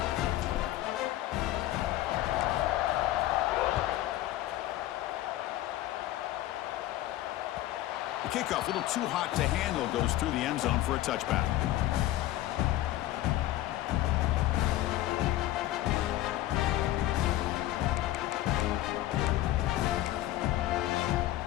The kickoff, a little too hot to handle, goes through the end zone for a touchback.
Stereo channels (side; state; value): right; quieter; 15.0 dB